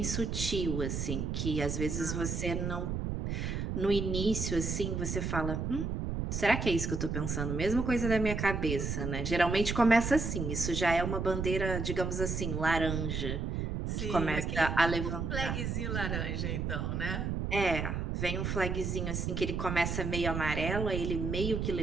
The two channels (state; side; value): noise; right; rumble, 2 dB below the sound